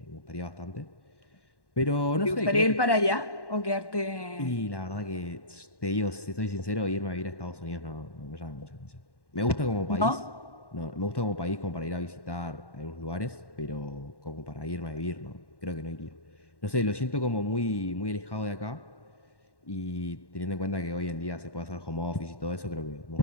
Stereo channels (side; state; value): right; late; 1.1 ms